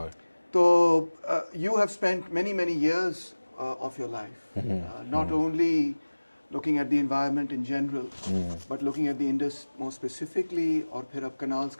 So you have spent many years of your life not only looking at the environment in general, but looking at the Indus more specifically. और फिर अब canals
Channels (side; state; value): both; inverted; correlation -1.00